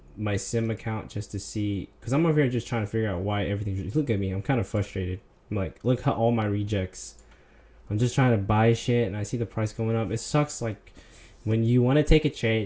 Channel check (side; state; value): both; identical; correlation 1.00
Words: my sim account, just to see, because I'm over here just trying to figure out why everything. Look at me, I'm kind of frustrated. I'm like, look how all my rejects. I'm just trying to buy shit and I see the price going up. It sucks. Like when you want to take a